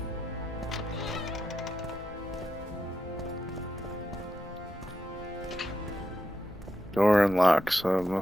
Door unlocked, so it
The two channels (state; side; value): normal; both; correlation 0.86